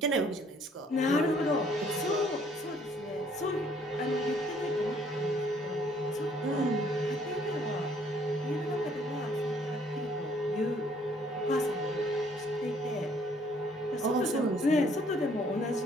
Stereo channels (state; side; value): normal; both; correlation 0.63